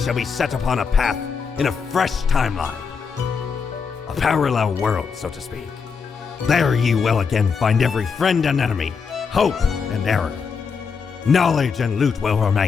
be set upon a path in a fresh timeline. A parallel world, so to speak. There ye will again find every friend and enemy, hope and error. Knowledge and loot will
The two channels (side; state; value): right; quieter; 5.7 dB